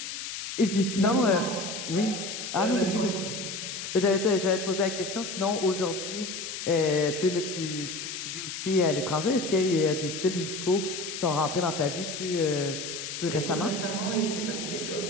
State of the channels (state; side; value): noise; left; hiss, 6 dB below the sound